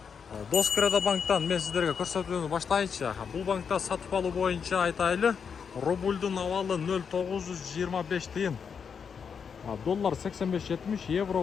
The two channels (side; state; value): right; quieter; 6.5 dB